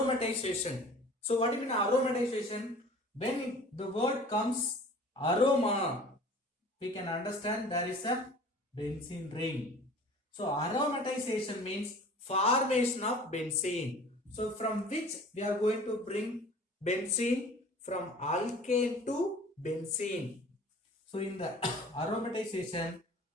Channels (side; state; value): both; normal; correlation 0.45